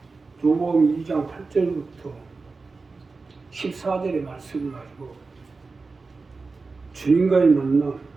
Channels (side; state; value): left; quieter; 4.1 dB